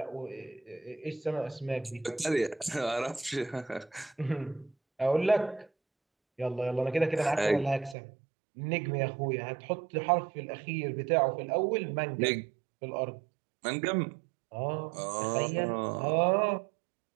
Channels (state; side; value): drops out; left; at 8.0 s